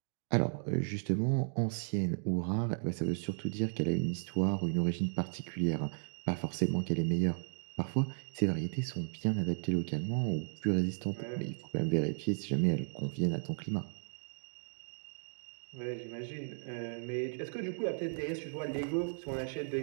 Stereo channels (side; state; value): left; silent; digital silence